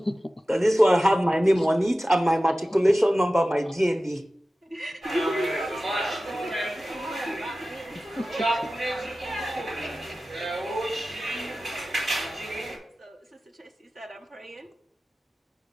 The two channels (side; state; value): both; normal; correlation 0.96